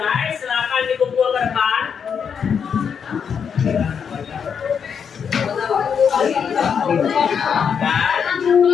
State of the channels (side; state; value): right; quieter; 7.0 dB